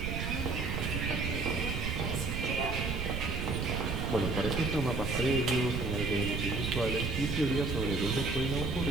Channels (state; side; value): noise; right; rumble, 2 dB below the sound